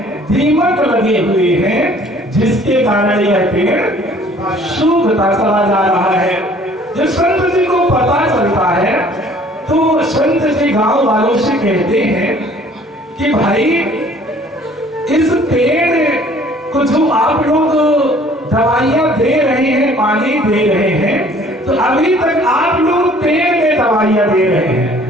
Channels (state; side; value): normal; both; correlation 0.55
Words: दीमक लगे हुए हैं, जिसके कारण यह पेड़ सूखता चला जा रहा है। जब संत जी को पता चलता है तो संत जी गांव वालों से कहते हैं कि भाई इस पेड़ को जो आप लोग दवाइयां दे रहे हैं, पानी दे रहे हैं, तो अभी तक आप लोग पेड़ में दवाइयां दे रहे